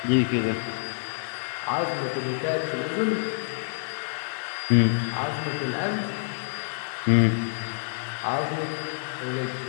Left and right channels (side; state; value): right; silent; digital silence